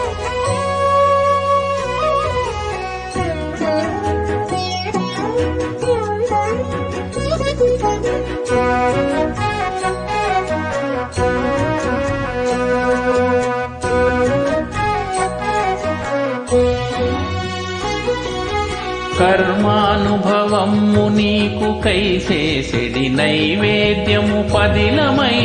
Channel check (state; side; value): identical; both; correlation 1.00